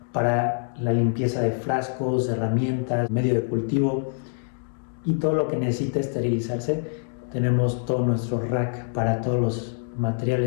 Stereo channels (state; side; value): silent; right; digital silence